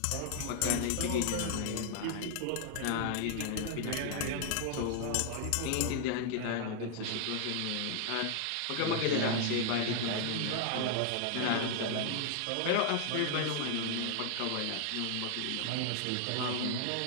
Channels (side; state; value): both; different; correlation 0.00